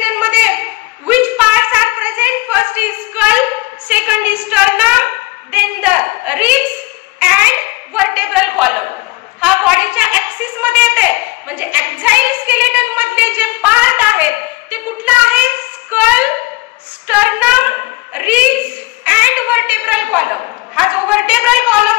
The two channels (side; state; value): right; quieter; 22.4 dB